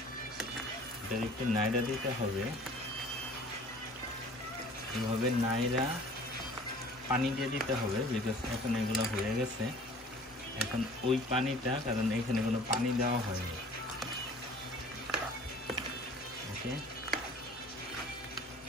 এটা একটু নাইড়া দিতে হবে, এভাবে নাইড়া পানি দিয়ে দিতে হবে, বিকজ এখন এগুলো হয়ে গেছে। এখন ওই পানিটা, কারণ এখানে কোনো পানি দেওয়া হয়নি। ওকে,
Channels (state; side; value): normal; both; correlation 0.48